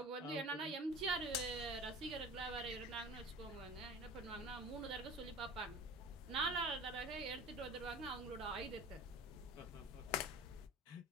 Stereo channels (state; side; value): normal; both; correlation 0.38